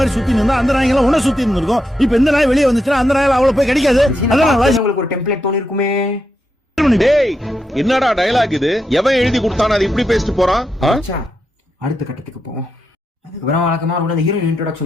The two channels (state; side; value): normal; both; correlation 0.84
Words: மாதிரி சுத்தி இருந்தா அந்த நாய்கள உன்ன சுத்தி இருந்திருக்கும். இப்ப இந்த நாய் வெளியே வந்துச்சுன்னா அந்த நாயில அவள போய் கிடைக்காது. அதான் உங்களுக்கு ஒரு டெம்ப்ளேட் தோணி இருக்குமே. டேய் என்னடா டயலாக் இது, எவன் எழுதி கொடுத்தானே அது இப்படி பேசிட்டு போறான்? அடுத்த கட்டத்துக்கு போவோம். அதுக்கப்புறம் வழக்கமா அந்த ஹீரோயின்